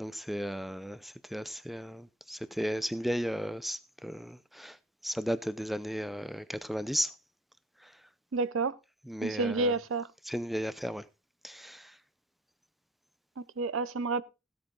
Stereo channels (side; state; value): both; normal; correlation 0.50